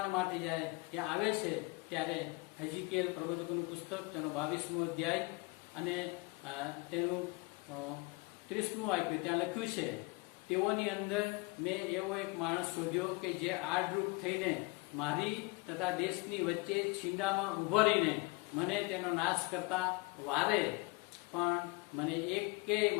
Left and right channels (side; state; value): right; quieter; 26.1 dB